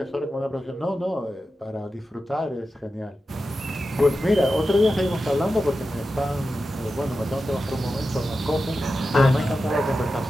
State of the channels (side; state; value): both; normal; correlation 0.92